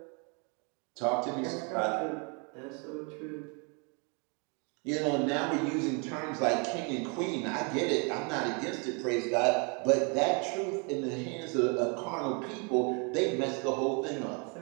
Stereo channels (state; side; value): quieter; left; 34.6 dB